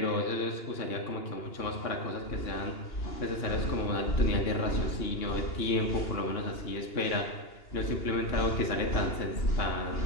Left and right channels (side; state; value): right; late; 2.8 ms